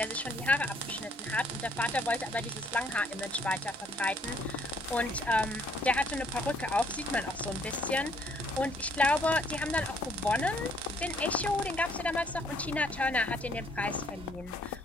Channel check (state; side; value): normal; both; correlation 0.65